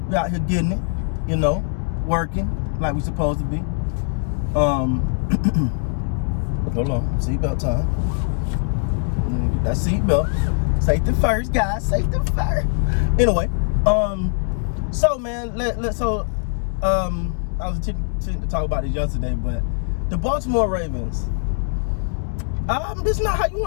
We out here getting it, working like we supposed to be. Hold on, seatbelt time. Get that seatbelt. Safety first, guys. Safety first. Anyway, so man, I was intending to talk about this yesterday, but the Baltimore Ravens, this is not how you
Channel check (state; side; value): silent; right; 60 dB below the other